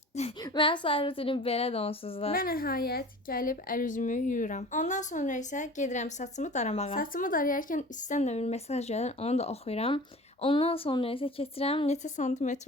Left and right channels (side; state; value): both; normal; correlation 0.40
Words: Mən səhər rutinim belədir onsuz da. Və nəhayət gəlib əl-üzümü yuyuram. Ondan sonra isə gedirəm saçımı daramağa. Saçımı darayarkən üstdən də bir mesaj gəlir, onu da oxuyuram. Ondan sonra isə keçirəm neçə santimetr